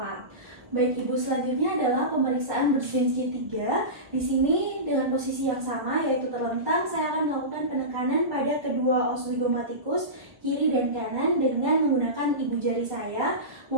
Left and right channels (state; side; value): late; left; 1.2 ms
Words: Baik Ibu, selanjutnya adalah pemeriksaan Brzezinski 3. Di sini dengan posisi yang sama yaitu terlentang, saya akan melakukan penekanan pada kedua os zygomatikus kiri dan kanan dengan menggunakan ibu jari saya.